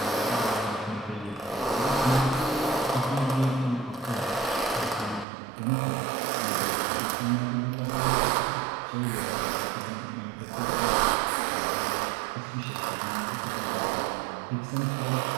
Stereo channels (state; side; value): drops out; left; at 5.2 s